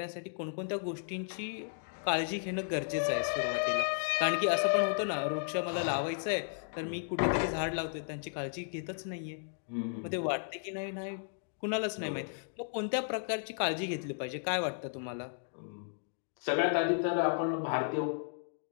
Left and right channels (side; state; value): right; silent; digital silence